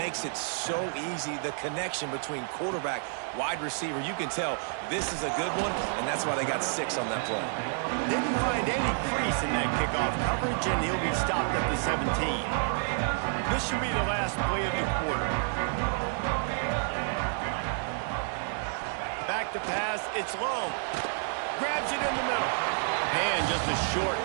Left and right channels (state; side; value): silent; left; 58 dB below the other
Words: it so easy, the connection between quarterback, wide receiver. You can tell this is a good one, and that's why they got 6 on that play. Didn't find any crease in that kickoff coverage, and he'll be stopped at the 17. This should be the last play of the quarter. Back to pass, it's low. Grabs it in the middle. And just a short,